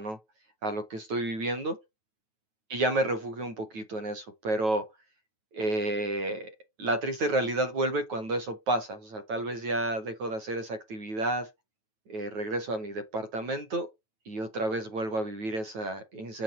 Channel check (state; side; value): late; left; 9.2 ms